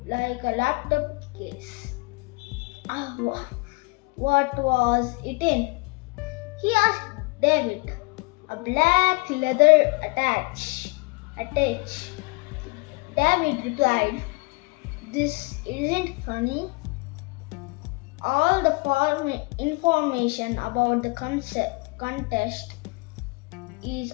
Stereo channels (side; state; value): right; quieter; 28.4 dB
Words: like a laptop case. What was it in? He asked David. A black leather attach. David replied, "This isn't funny. All the information about the contest is